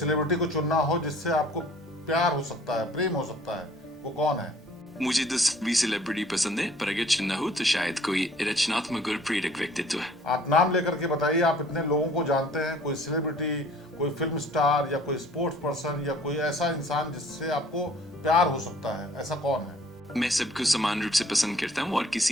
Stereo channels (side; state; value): both; normal; correlation 0.55